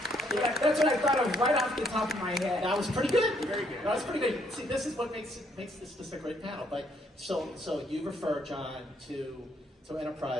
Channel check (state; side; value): normal; both; correlation 0.70